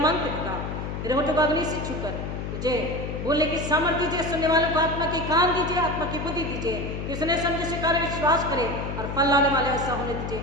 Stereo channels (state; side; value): noise; left; hum, 5 dB below the sound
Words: पिता तेरे होठों को अग्नि से छूकर तुझे बोलने की सामर्थ्य दीजिए, सुनने वालों को आत्मा के कान दीजिए, आत्मा की बुद्धि दीजिए कि सुने समझे स्वीकार विश्वास करे और फल लाने वाले ऐसा होने दीजिए।